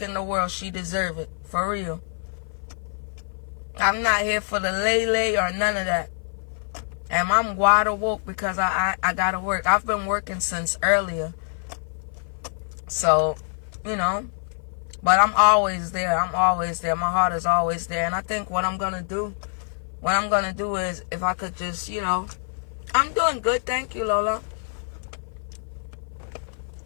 in the world, she deserve it. For real. I'm not here for the lay or none of that. And I'm wide awake because I gotta work. I've been working since earlier. So, you know. But I'm always there. I'm always there. My heart is always there. And I think what I'm gonna do is, if I could just, you know, I'm doing good, thank you, Lola.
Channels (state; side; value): silent; right; 55 dB below the other